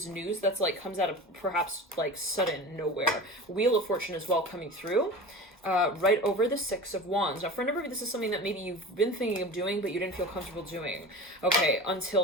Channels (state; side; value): normal; both; correlation 0.33